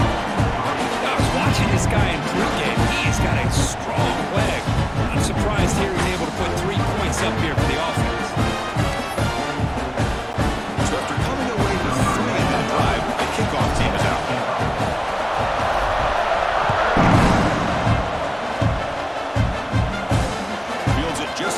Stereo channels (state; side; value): identical; both; correlation 1.00